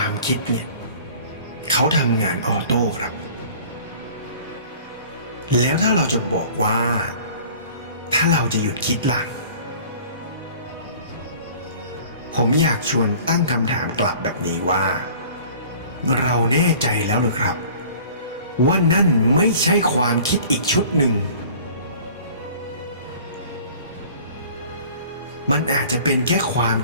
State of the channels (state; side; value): inverted; both; correlation -0.47